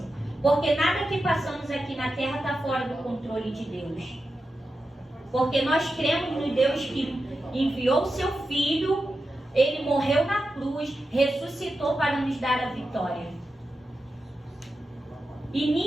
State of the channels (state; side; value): normal; both; correlation 0.90